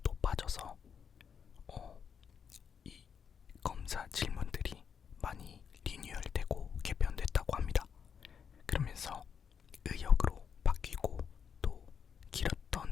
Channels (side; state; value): right; quieter; 7.1 dB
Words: 높아져서 이 검사 질문들이 많이 리뉴얼되고 개편됐다고 합니다. 그러면서 의역으로 바뀌고 또